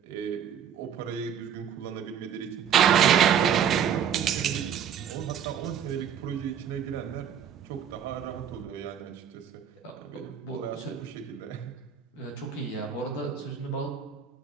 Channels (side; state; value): left; quieter; 8.7 dB